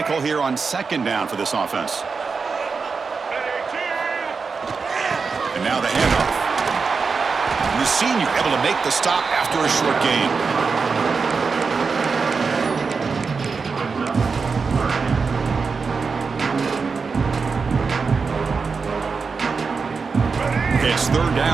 call here on 2nd down for this offense? And now the handoff. And the senior able to make the stop after a short gain. Okay, it's 3rd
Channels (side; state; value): left; quieter; 4.9 dB